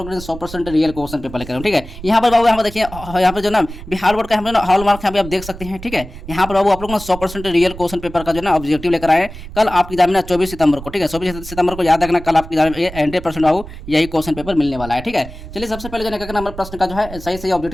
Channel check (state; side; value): noise; right; rumble, 13 dB below the sound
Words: 100% रियल क्वेश्चन पेपर लेकर। ठीक है, यहाँ पर बाबू यहाँ पर देखिए, यहाँ पर जो ना बिहार बोर्ड का हम ना हॉल मार्क यहाँ पे आप देख सकते हैं। ठीक है, यहाँ पर बाबू आप लोग ना 100% रियल क्वेश्चन पेपर का जो ना ऑब्जेक्टिव लेकर आए कल आपकी एग्जाम में 24 सितंबर को। ठीक है, 24 सितंबर को याद रखना, कल आपकी एग्जाम में 100% बाबू यही क्वेश्चन पेपर मिलने वाला है। ठीक है, चलिए सबसे पहले जो है नंबर प्रश्न का जो है सही सही